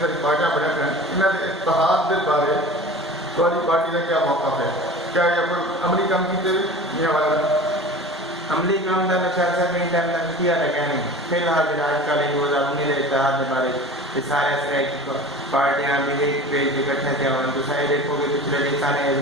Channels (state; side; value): normal; both; correlation 0.38